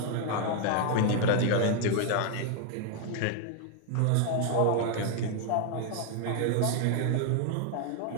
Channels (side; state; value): both; different; correlation 0.00